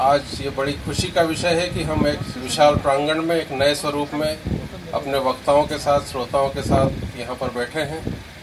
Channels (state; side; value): identical; both; correlation 1.00